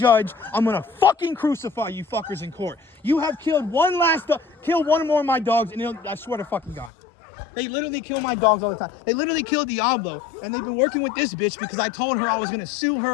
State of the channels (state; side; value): drops out; right; at 6.9 s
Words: I'm gonna fucking crucify you fuckers in court. You have killed kill one more of my dogs, and I swear to fucking God. They literally kill my dogs all the time. They literally killed Diablo, and they've been working with this bitch because I told her I was gonna sue